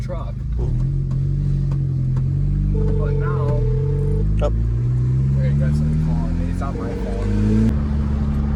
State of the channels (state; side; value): identical; both; correlation 1.00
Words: truck. But now, there you go, somebody calling me. It's on my phone.